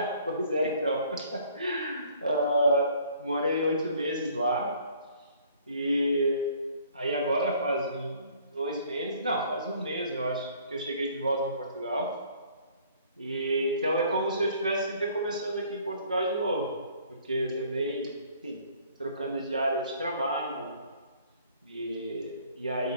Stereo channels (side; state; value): both; inverted; correlation -0.57